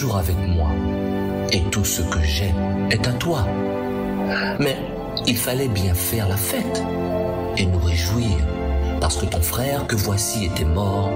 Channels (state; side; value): identical; both; correlation 1.00